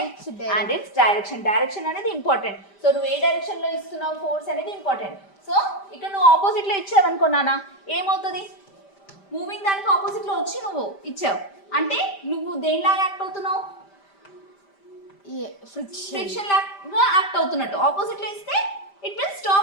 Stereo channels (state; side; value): late; right; 5.1 ms